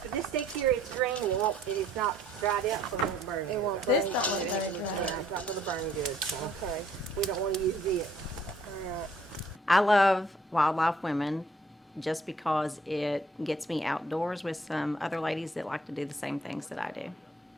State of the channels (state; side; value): normal; both; correlation 0.62